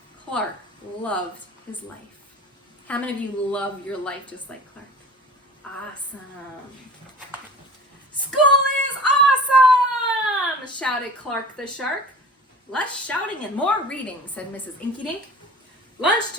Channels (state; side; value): normal; both; correlation 0.40